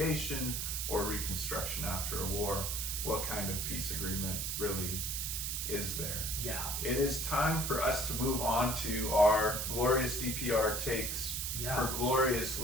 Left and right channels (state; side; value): noise; right; hiss, 2 dB below the sound